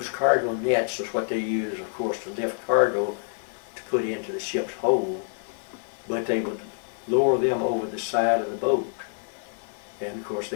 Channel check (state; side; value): silent; right; digital silence